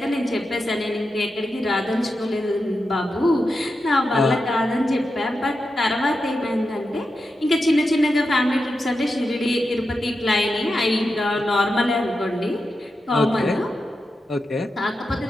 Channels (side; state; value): both; normal; correlation 0.89